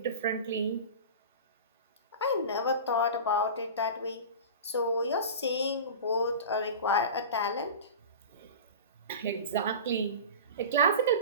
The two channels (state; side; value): inverted; both; correlation -0.32